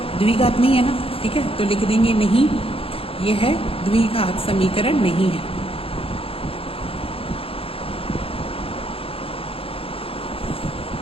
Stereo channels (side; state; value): right; late; 0.27 ms